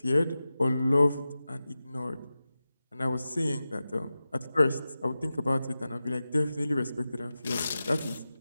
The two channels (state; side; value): inverted; both; correlation -0.94